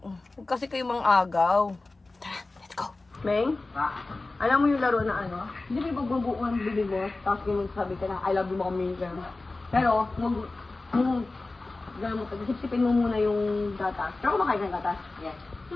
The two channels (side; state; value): right; quieter; 3.2 dB